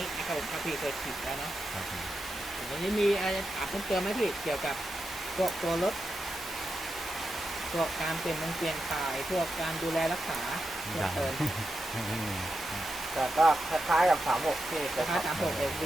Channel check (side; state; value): both; normal; correlation 0.88